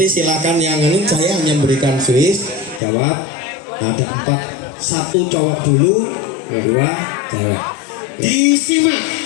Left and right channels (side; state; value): right; drops out; at 2.8 s